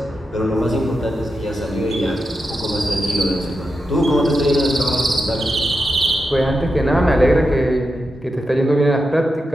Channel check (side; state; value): both; normal; correlation 0.88